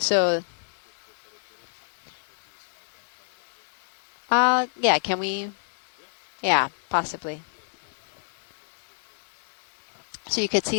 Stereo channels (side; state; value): right; silent; digital silence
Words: want better footage, or do you just want to identify Watchley? yeah, can we? Yeah. Yeah, possibly. Yeah, video. Come out partial real quick. So you could